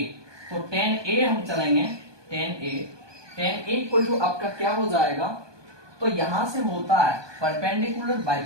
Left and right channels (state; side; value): late; left; 1.2 ms